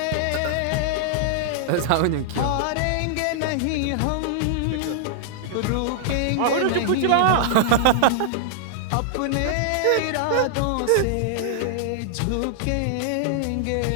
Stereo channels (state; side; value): different; both; correlation -0.01